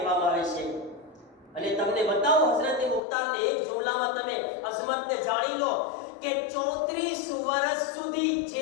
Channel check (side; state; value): right; drops out; at 3.0 s